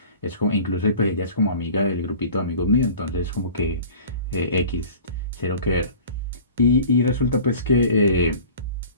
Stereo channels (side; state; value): both; inverted; correlation -0.44